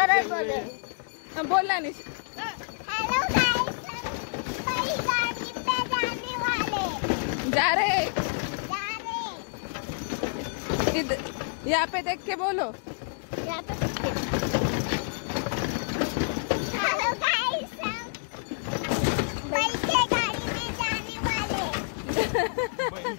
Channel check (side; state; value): right; silent; digital silence